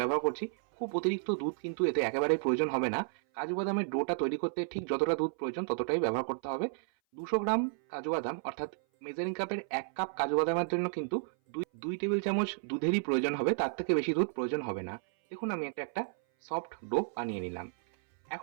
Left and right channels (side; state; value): left; silent; 56 dB below the other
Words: করছি। খুব অতিরিক্ত দুধ কিন্তু এতে একেবারেই প্রয়োজন হবে না। কাজু বাদামের ডোটা তৈরি করতে ঠিক যতটা দুধ প্রয়োজন ততটাই ব্যবহার করতে হবে। 200 গ্রাম কাজু বাদাম অর্থাৎ মেজারিং কাপের 1 কাপ কাজু বাদামের জন্য কিন্তু দুই টেবিল চামচ দুধেরই প্রয়োজন হবে, তার থেকে বেশি দুধ প্রয়োজন হবে না। দেখুন আমি একটা সফট ডো বানিয়ে নিলাম।